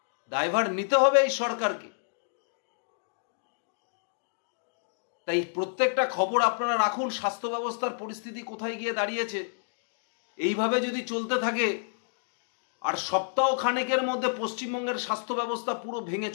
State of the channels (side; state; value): right; silent; digital silence